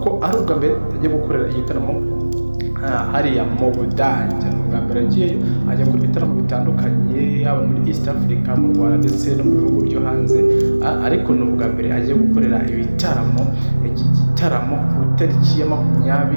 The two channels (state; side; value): inverted; both; correlation -1.00